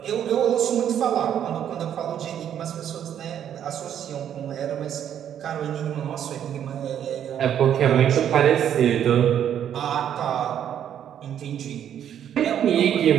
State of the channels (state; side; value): quieter; left; 9.7 dB